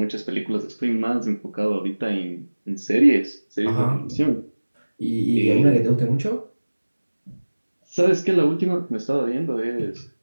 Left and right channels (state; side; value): inverted; both; correlation -1.00